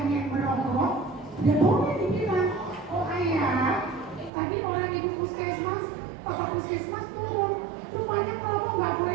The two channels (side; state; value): left; drops out; at 4.3 s